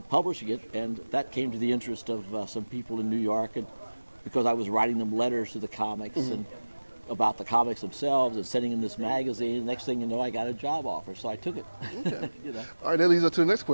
publishing it, and that came to the interest of some people in New York, and because I was writing them letters to the comics and about the comics themselves and sending them this magazine. Next thing you know, I got a job offer, so I took it. Okay. You know. All right, that leads us to the next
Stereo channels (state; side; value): inverted; both; correlation -1.00